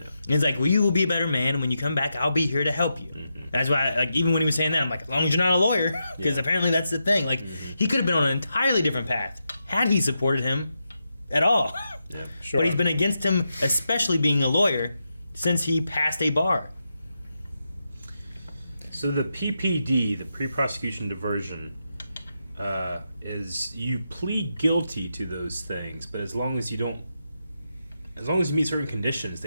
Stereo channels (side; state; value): both; inverted; correlation -0.86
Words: And it's like, well, you will be a better man, and when you come back, I'll be here to help you. Mm-hmm. That's why, like, even when he was saying that, I'm like, as long as you're not a lawyer, because apparently that's the thing. Like, he could have been on an entirely different path had he supported him at all. Yeah. Sure. But he's been against him, especially being a lawyer, since he passed a bar. So the PPD, the pre-prosecution diversion, is you plead guilty to those things, but as long as you meet certain conditions,